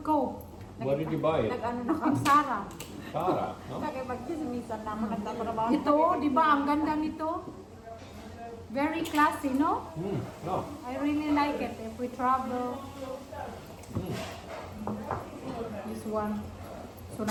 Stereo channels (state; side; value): identical; both; correlation 1.00